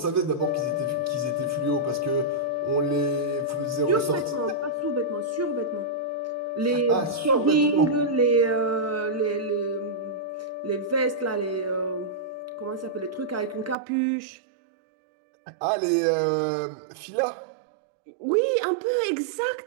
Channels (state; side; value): drops out; left; at 13.8 s